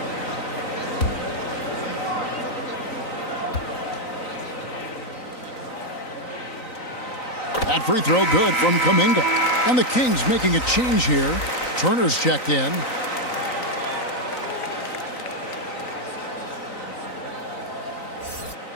That free throw good from Kuminga. And the Kings making a change here. Turner's checked in.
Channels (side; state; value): right; late; 3.9 ms